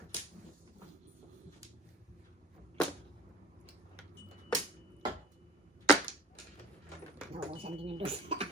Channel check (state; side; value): normal; both; correlation 0.40